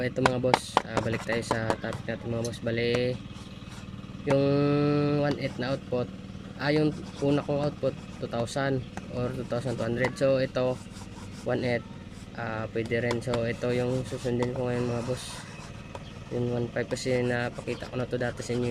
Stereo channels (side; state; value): both; identical; correlation 1.00